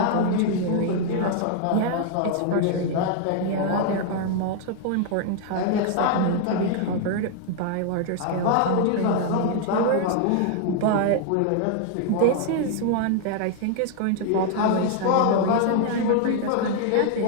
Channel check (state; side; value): different; both; correlation 0.00